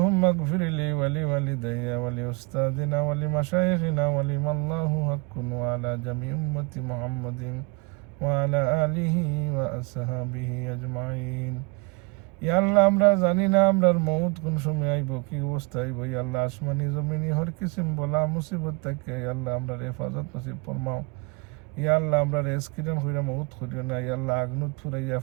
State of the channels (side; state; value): left; quieter; 29.0 dB